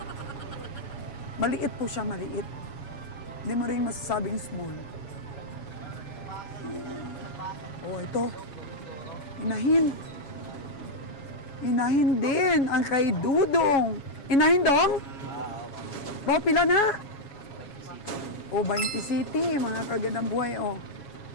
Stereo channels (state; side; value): late; right; 7.2 ms